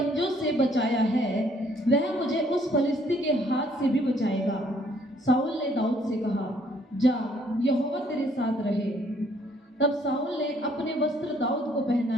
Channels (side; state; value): both; normal; correlation 0.64